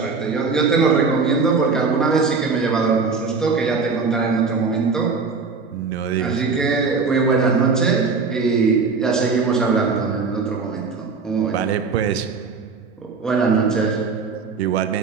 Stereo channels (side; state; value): left; quieter; 4.7 dB